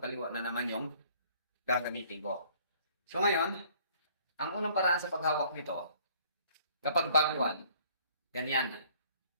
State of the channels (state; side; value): inverted; both; correlation -0.58